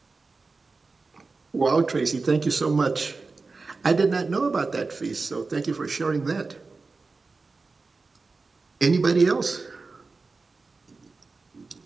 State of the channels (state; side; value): quieter; left; 4.0 dB